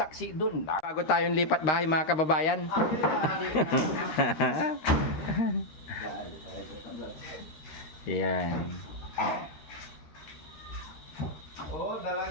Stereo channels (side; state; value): right; late; 13 ms